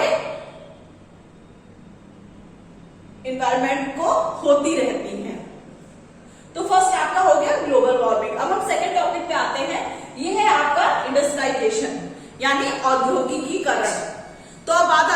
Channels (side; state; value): both; identical; correlation 1.00